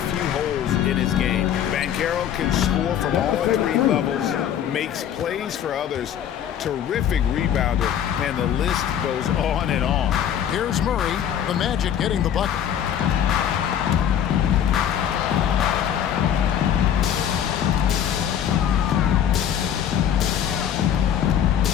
holes in his game. Banchero can score from all 3 levels, makes plays for others, terrific rebounder, and the list goes on and on. Here's Murray, the Magic getting the bucket.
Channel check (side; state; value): right; quieter; 9.6 dB